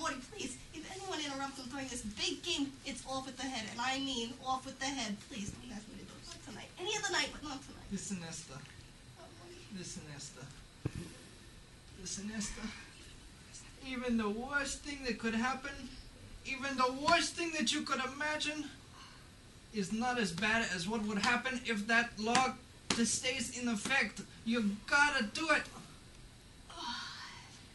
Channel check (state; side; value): identical; both; correlation 1.00